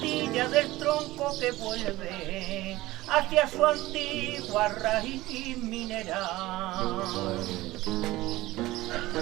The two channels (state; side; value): quieter; left; 18.0 dB